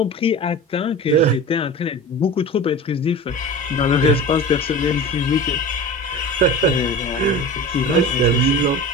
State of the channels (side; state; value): both; normal; correlation 0.33